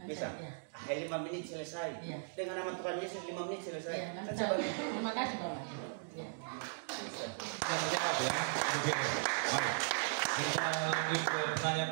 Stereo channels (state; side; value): silent; left; digital silence